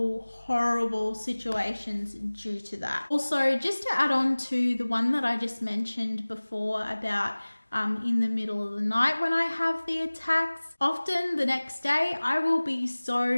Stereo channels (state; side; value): inverted; both; correlation -1.00